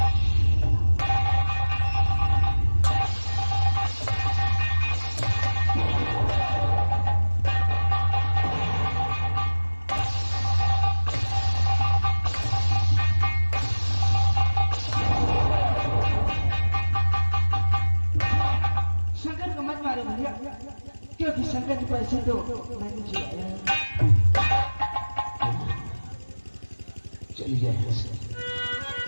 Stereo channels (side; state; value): both; inverted; correlation -1.00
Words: शंकर को मत मारो भैया, क्योंकि शंकर के पैसे तो मैंने चुराए हैं। चली जाए यहाँ से।